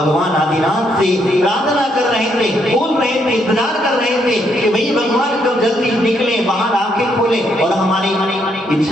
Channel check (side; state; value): both; normal; correlation 0.74